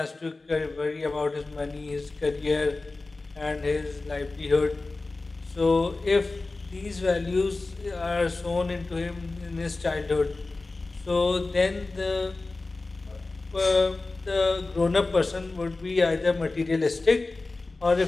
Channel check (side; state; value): right; quieter; 3.4 dB